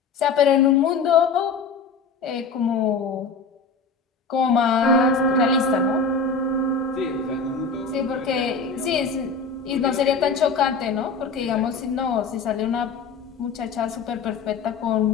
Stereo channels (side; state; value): right; quieter; 4.8 dB